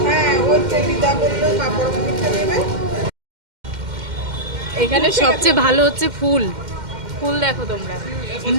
হ্যাঁ ওই তো দিদা বললো কাপড় কিনতে নেবে এখানে সবচেয়ে ভালো হচ্ছে ফুল দেখো তোমরা।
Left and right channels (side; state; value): left; late; 2.1 ms